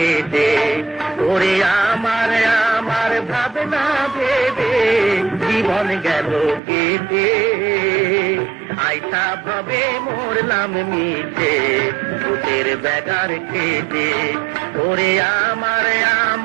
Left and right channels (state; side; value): drops out; left; at 6.6 s